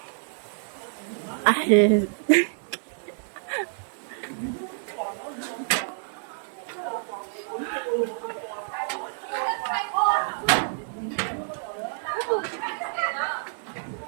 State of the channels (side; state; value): left; silent; digital silence